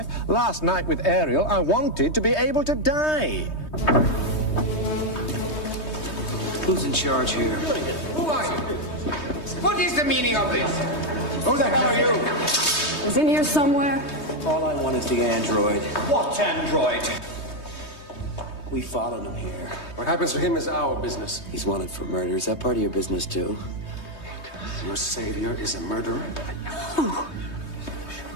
Last night with Ariel, I wanted to be able to die. Who's in charge here? Who are you? What is the meaning of this? Who the hell are you? He's in here somewhere. All I want is the android. What android? We followed him here. What happens to him is our business. He's wanted for murder. Is that part of your business, too? Your savior is a murderer?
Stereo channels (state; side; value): late; right; 3.2 ms